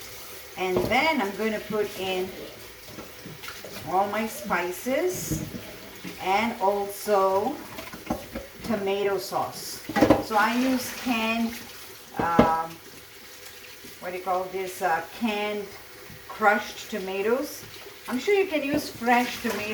And then I'm going to put in all my spices and also tomato sauce. So I use canned, canned crushed tomatoes. I'm sure you can use fresh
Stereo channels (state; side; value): identical; both; correlation 1.00